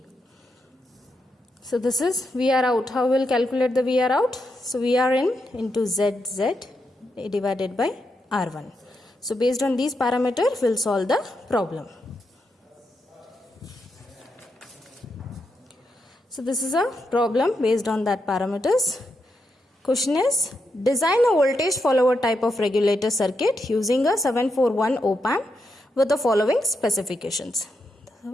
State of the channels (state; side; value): normal; both; correlation 0.83